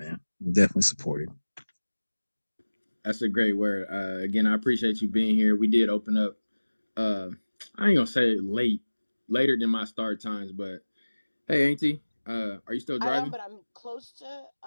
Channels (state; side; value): inverted; both; correlation -1.00